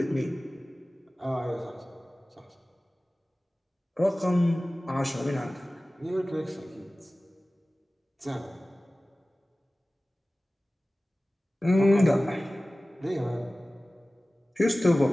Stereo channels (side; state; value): both; normal; correlation 0.97